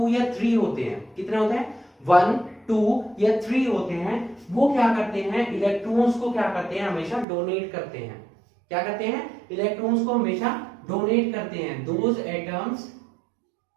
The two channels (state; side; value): drops out; left; at 7.2 s